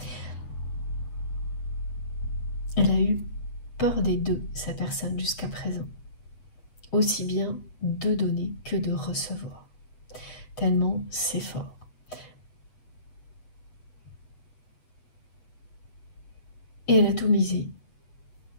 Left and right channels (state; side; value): late; right; 8.0 ms